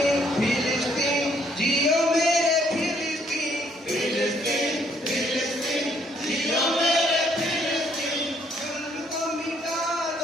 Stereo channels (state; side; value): normal; both; correlation 0.68